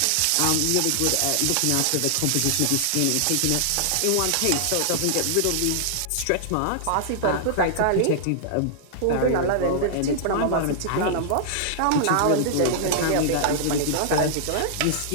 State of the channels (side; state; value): both; different; correlation -0.01